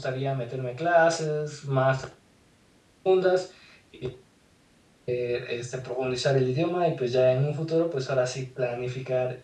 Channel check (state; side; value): identical; both; correlation 1.00